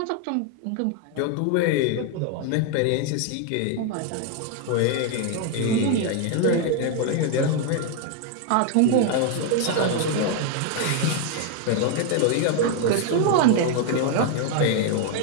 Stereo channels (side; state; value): both; different; correlation 0.01